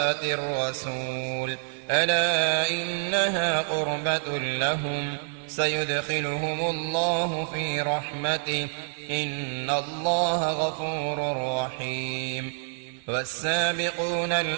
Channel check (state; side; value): silent; left; digital silence